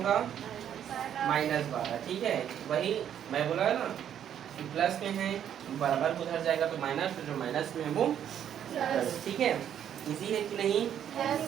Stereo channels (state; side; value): quieter; left; 9.7 dB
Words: माइनस 12। ठीक है, वही मैं बोला है ना कि प्लस में है बराबर को उधर जाएगा तो माइनस, तो जो माइनस में है वो Plus. प्लस। ठीक है, इजी है कि नहीं? Yes,